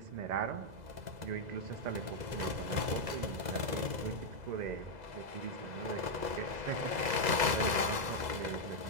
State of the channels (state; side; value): late; left; 2.0 ms